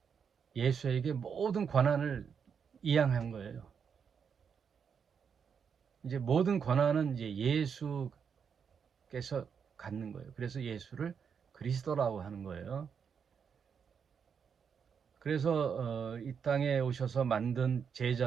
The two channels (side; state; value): left; quieter; 6.8 dB